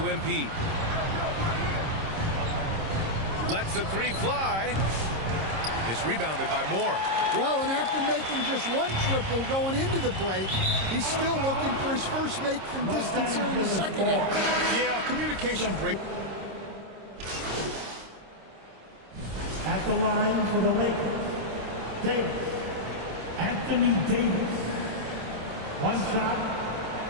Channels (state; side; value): late; left; 26 ms